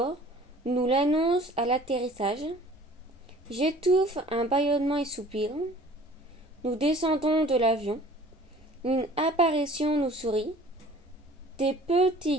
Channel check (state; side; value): normal; both; correlation 0.49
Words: nous l'annonce à l'atterrissage. J'étouffe un bâillement et soupir. Nous descendons de l'avion. Une apparition nous sourit. Des petits